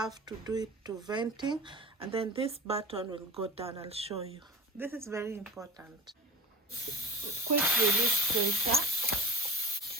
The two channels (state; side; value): normal; both; correlation 0.39